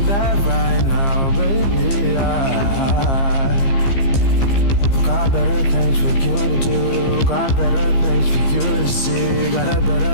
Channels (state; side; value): late; right; 15 ms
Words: that right now, baby. I got better things for you to do. Got better things for you to see. Got a